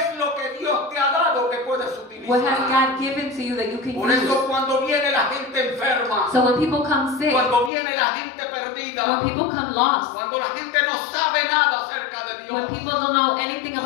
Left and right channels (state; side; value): drops out; right; at 7.7 s